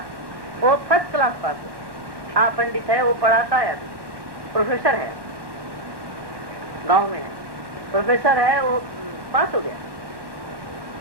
वो फर्स्ट क्लास पास है। हाँ, पंडित है, वो पढ़ाता है, अभी प्रोफेसर है, गांव में है, प्रोफेसर है, वो पास हो गया।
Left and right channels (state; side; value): late; left; 1.1 ms